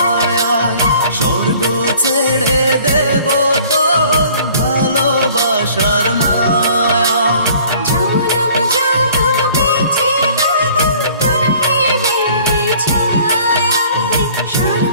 স্বর্গ ছেড়ে দেব তোর ভালোবাসার মায়া। জনম জনম বেঁচে রব তোর প্রেমের ছায়ায়,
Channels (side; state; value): both; inverted; correlation -0.52